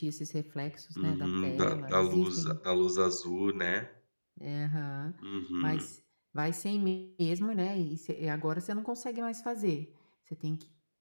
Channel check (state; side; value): inverted; both; correlation -1.00